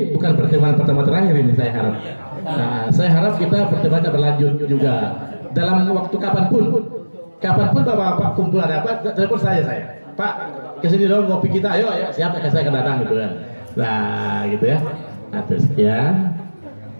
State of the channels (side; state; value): both; inverted; correlation -1.00